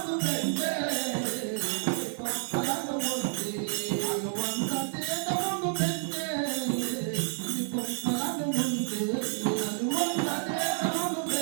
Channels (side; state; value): left; silent; digital silence